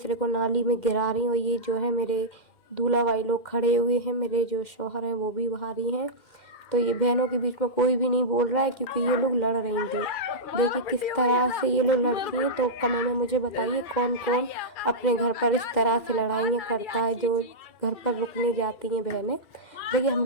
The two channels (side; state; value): right; late; 2.4 ms